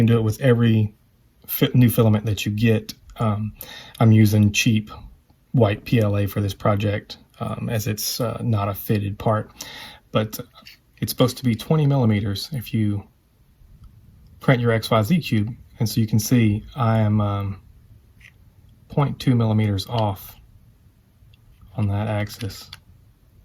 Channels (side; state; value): both; identical; correlation 1.00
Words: do it with every new filament that you get. I'm using cheap white PLA for this project as it's not a fitted part, but it's supposed to be 20 millimeters if you print your XYZ cube. And so you can see I am 0.2 millimeters off on that axis.